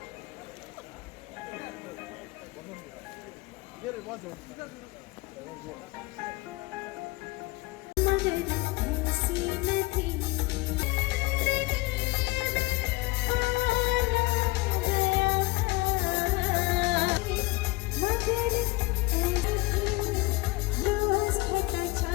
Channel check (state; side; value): quieter; right; 22.0 dB